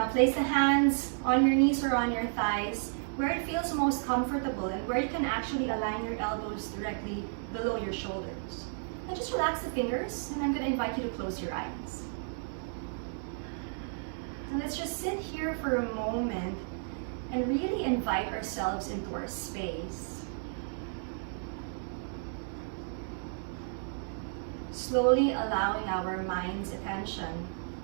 place the hands on your knees or on your thighs where it feels most comfortable and where you can actually align your elbows directly below your shoulders. And just relax the fingers, and I'm going to invite you to close your eyes. And let's just sit here for a moment and really invite ourselves into our space. Slowly allowing our mind's attention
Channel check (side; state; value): left; silent; digital silence